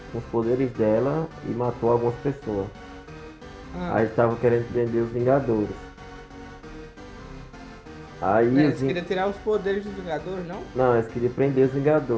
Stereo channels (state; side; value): identical; both; correlation 1.00